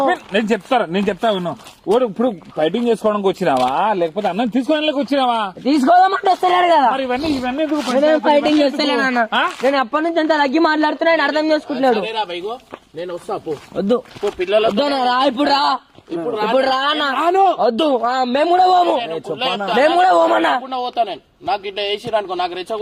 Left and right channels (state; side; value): identical; both; correlation 1.00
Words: నేను చెప్తా ఉన్నావు. ఇప్పుడు ఫైటింగ్ చేసుకోవడానికి వచ్చినావా లేకపోతే అన్నం తీసుకోవడానికి వచ్చినావా? తీసుకోదామంటే వస్తలేడు కదా. మరి ఇవన్నీ ఫైటింగ్ చేస్తలేను అన్న. నేను అప్పటి నుంచి అంత తగ్గి మాట్లాడుతున్నాడు అర్థం చేసుకుంటున్నాడు. నేను వస్తా వద్దు పిల్లలు రా. ఇప్పుడు రా వద్దు. మేము కూడా పోము. మేము కూడా పోమన్నా. పోతా నేను. నాకు ఇట్లా వేసిరనుకో, నాకు